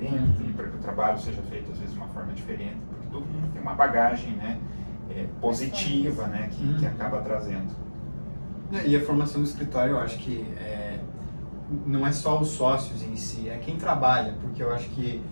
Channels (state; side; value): inverted; both; correlation -1.00